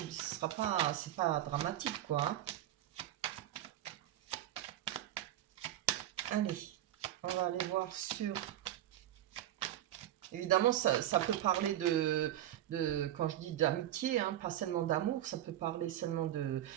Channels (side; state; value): left; quieter; 12.7 dB